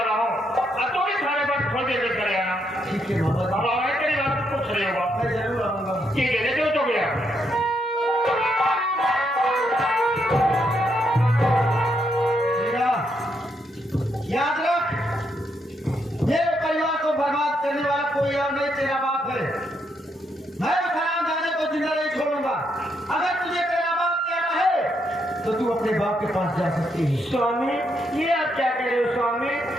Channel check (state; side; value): normal; both; correlation 0.77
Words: हूँ। अब तो भी थाने पर थोड़ी देर में चले आना। ठीक है मामा जी। अब आगे तेरी बात कुछ नहीं होगा। मैं जरूर आऊंगा। ठीक है, देखो तो गया। बेटा, याद रख, मेरे परिवार को बर्बाद करने वाला कोई और नहीं, तेरा बाप है। मैं उस हरामजादे को जिंदा नहीं छोड़ूंगा। अगर तुझे तेरा बाप कहना है तो तू अपने बाप के पास जा सकती है। स्वामी, ये आप क्या कह रहे हो स्वामी?